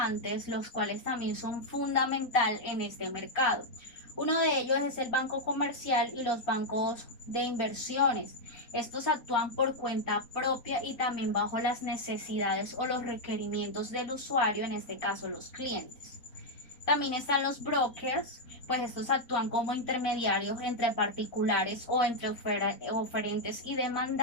los cuales también son fundamental en este mercado. Uno de ellos es el banco comercial y los bancos de inversiones. Estos actúan por cuenta propia y también bajo las necesidades o los requerimientos del usuario, en este caso los clientes. También están los brokers, pues estos actúan como intermediarios entre particulares o entre oferentes y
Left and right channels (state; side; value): late; right; 4.2 ms